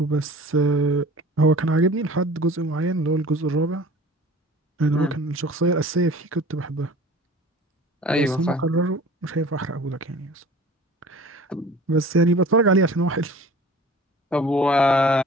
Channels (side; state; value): both; normal; correlation 0.44